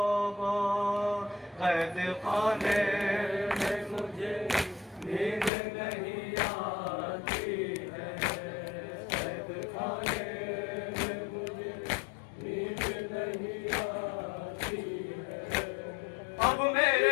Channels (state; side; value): drops out; right; at 5.5 s